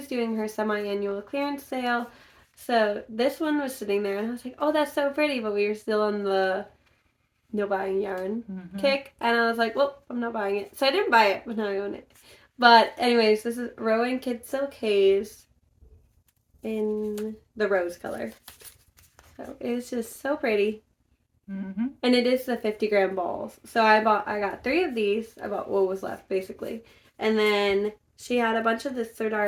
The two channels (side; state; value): both; identical; correlation 1.00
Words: doing her semi-annual clearance sale. So this one was sitting there, and I was like, oh, that's so pretty. But we were still on the no buying yarn kick. And I was like, well, I'm not buying it. So I didn't buy it, but now I own it. But anyways, this is Rowan Kid Silk Haze in the rose color. So it's just so pretty. And it is the 50-gram balls. So I got 3 of these. I bought what was left, basically. And then she had a bunch of this